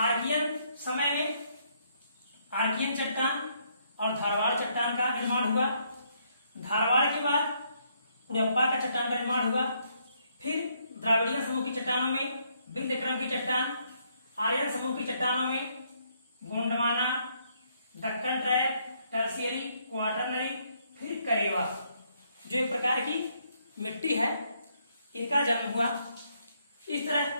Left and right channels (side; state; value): both; inverted; correlation -0.72